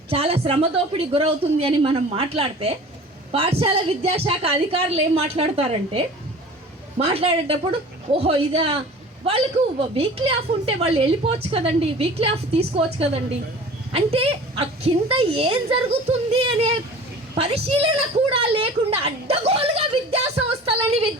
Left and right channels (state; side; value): normal; both; correlation 0.42